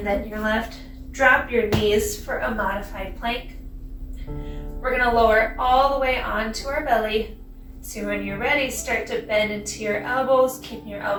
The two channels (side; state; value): both; identical; correlation 1.00